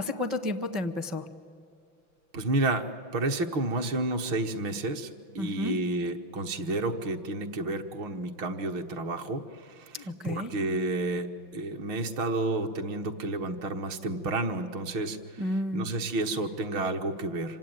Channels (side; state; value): left; late; 5.9 ms